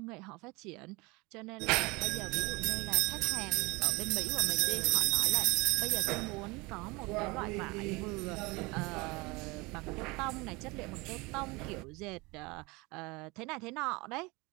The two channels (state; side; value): quieter; left; 25.1 dB